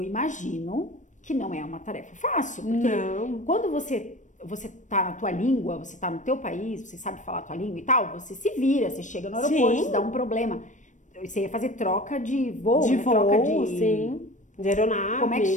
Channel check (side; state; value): right; late; 0.36 ms